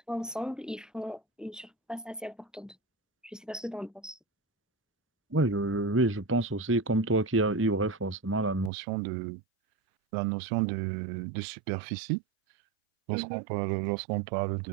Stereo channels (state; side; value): drops out; left; at 8.7 s